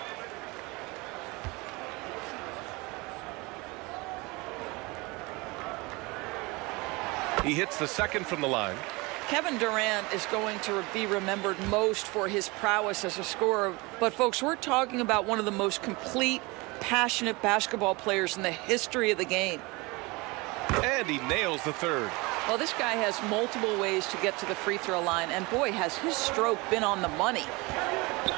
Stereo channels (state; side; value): quieter; left; 25.0 dB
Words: He hits the second from the line. Kevin Durant is going to be remembered most for his prowess as a scorer. But, folks, we're talking about one of the most complete, passionate basketball players in the history of the game. And he nails the third. Well, this guy has multiple ways to get to the free throw line. And, boy, has his stroke been on the money.